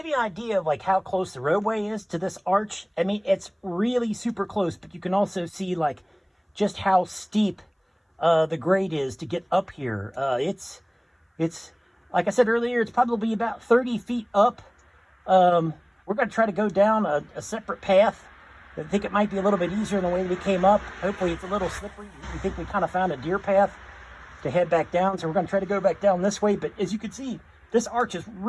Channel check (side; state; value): both; identical; correlation 1.00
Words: you an idea of like how close the roadway is to this arch, I mean, it's really super close, but you can also see like just how steep the grade is to get up here. It's like I said earlier, it's probably about 30 feet up. We're going to try to go down a separate path. I think it might be a little bit easier than the way we came up. Hopefully it's a little slippery. We think we kind of found a deer path to head back down, so we're going to try to go back down this way. But as you can see, this arch is